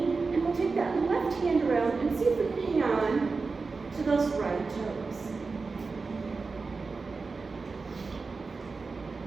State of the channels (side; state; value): left; quieter; 4.3 dB